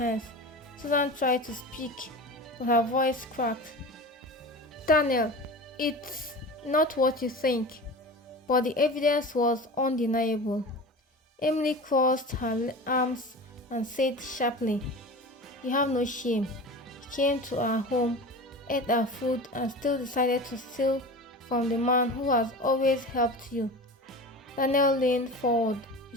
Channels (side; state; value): both; normal; correlation 0.32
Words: Susan tried to speak, but her voice cracked. "Daniel, it's not what you think." But the evidence was undeniable. Emily crossed her arms and said sharply, "You have no shame. You came to our home, ate our food, and still decided to steal from the man who has always helped you." Daniel leaned forward,